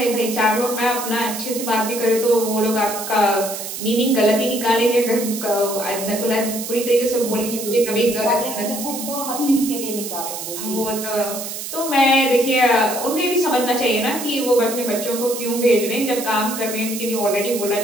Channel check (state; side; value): noise; right; hiss, 7 dB below the sound